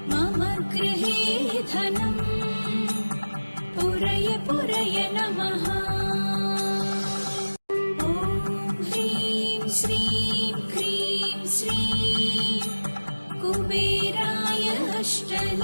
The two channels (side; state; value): both; inverted; correlation -1.00